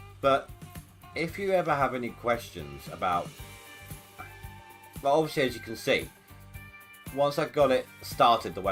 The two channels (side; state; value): both; identical; correlation 1.00